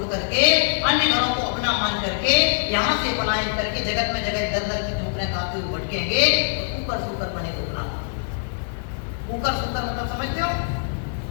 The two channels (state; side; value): silent; right; digital silence